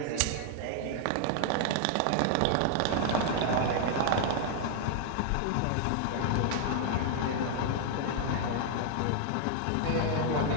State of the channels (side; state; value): both; different; correlation 0.00